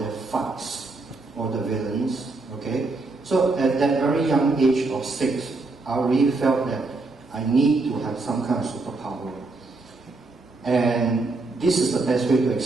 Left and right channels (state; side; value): quieter; left; 3.5 dB